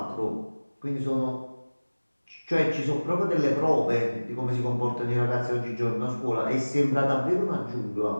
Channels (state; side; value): inverted; both; correlation -1.00